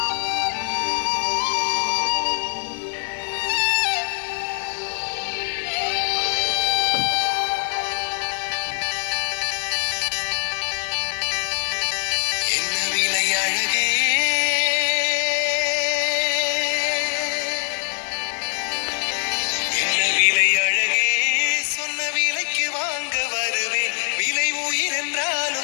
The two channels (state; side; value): silent; right; digital silence